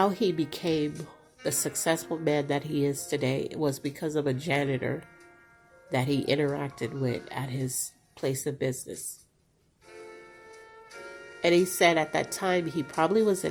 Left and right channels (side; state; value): both; identical; correlation 1.00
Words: he became the successful man that he is today was because of a janitor that he interacted with at his place of business. And he said at that time he probably was